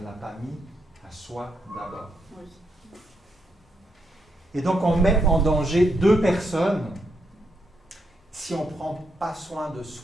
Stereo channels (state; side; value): normal; both; correlation 0.79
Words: l'a pas mis à soi d'abord. Et donc, on met en danger 2 personnes si on ne prend pas soin de